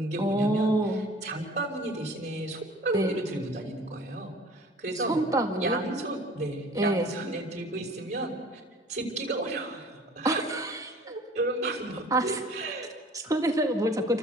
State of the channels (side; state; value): both; normal; correlation 0.48